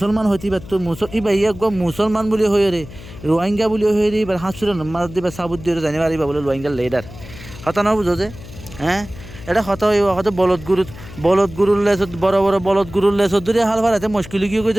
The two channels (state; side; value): noise; left; hum, 16 dB below the sound